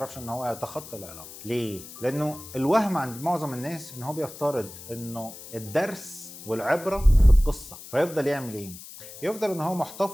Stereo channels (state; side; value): noise; left; hiss, 15 dB below the sound